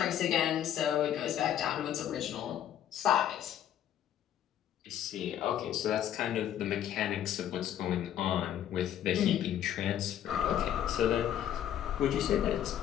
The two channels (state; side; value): quieter; right; 10.8 dB